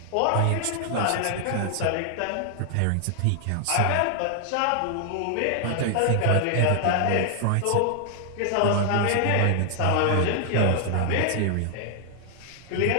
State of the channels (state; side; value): different; both; correlation 0.00